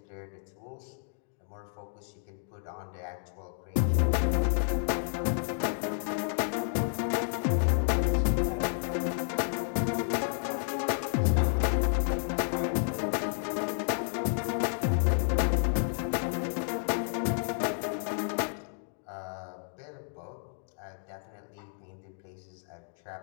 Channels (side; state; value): right; silent; digital silence